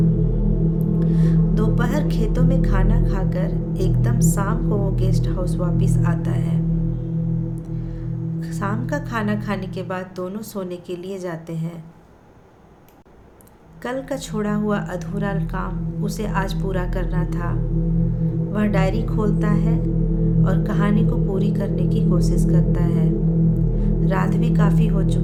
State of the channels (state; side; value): identical; both; correlation 1.00